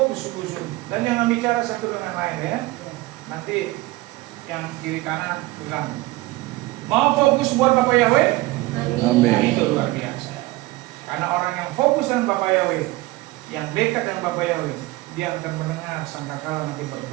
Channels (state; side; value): quieter; left; 19.7 dB